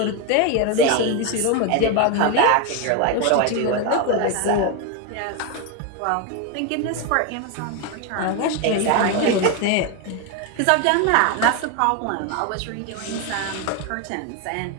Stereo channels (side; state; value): both; different; correlation 0.02